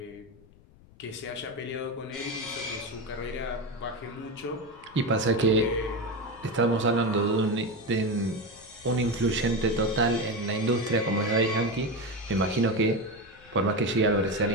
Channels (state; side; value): noise; left; rumble, 25 dB below the sound